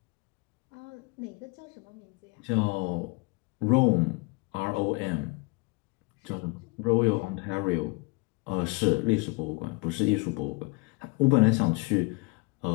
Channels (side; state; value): right; quieter; 28.1 dB